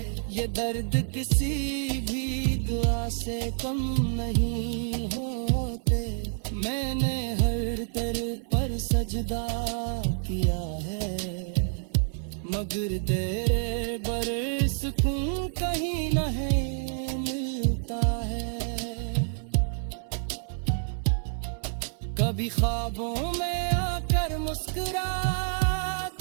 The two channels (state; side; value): silent; left; 56 dB below the other